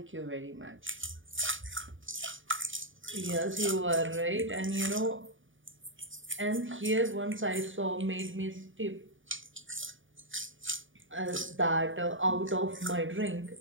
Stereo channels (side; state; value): left; late; 0.57 ms